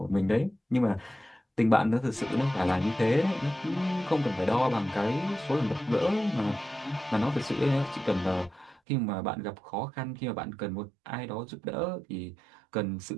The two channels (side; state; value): left; drops out; at 8.8 s